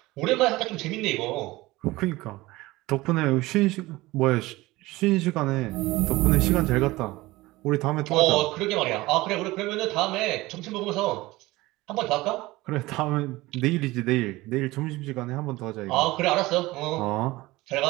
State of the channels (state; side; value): quieter; left; 19.7 dB